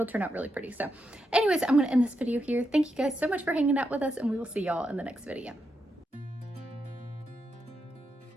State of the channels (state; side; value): normal; both; correlation 0.84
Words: turn out really pretty. So anyways, I'm gonna end this video here. Thank you guys so much for hanging out with us, and we will see y'all in the next video.